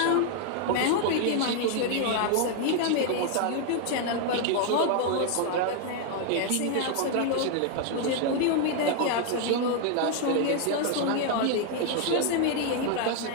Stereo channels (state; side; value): different; both; correlation 0.00